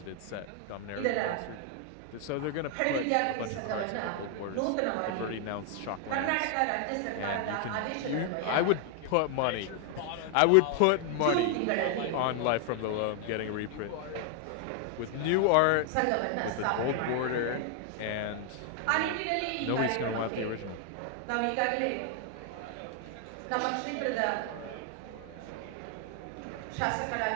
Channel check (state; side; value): different; both; correlation 0.00